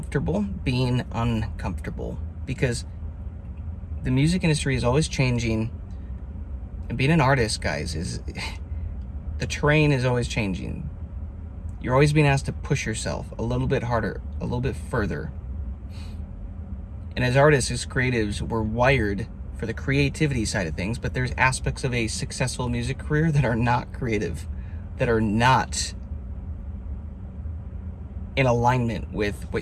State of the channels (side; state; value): both; identical; correlation 1.00